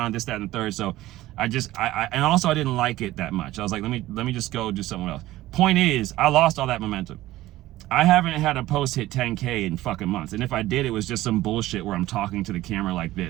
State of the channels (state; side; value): quieter; left; 16.2 dB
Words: this, that, and the third. So and also I didn't like it that much. I was like, let me just go do something else. Point is, I lost all that momentum. I haven't had a post hit 10K in fucking months. And if I did, it was just some bullshit where I'm talking to the camera like